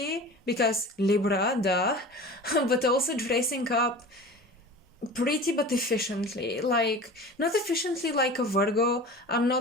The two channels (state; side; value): normal; both; correlation 0.37